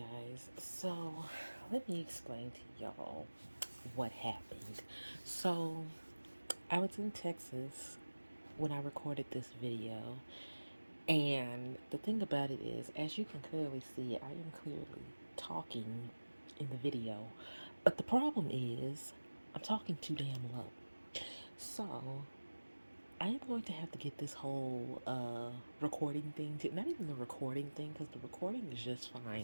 so let me explain to y'all what happened. So, I was in Texas when I recorded this video, and the thing about it is, as you can clearly see, I am clearly talking in the video, but the problem is, I'm talking too damn low. So, I am going to have to get this whole recording thing to not even the recording thing because the recording is just fine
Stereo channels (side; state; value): both; inverted; correlation -1.00